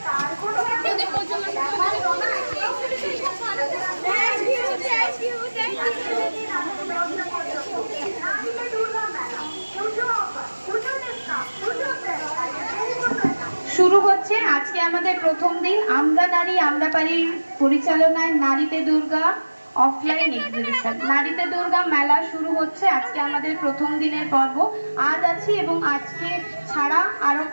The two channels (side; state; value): both; inverted; correlation -1.00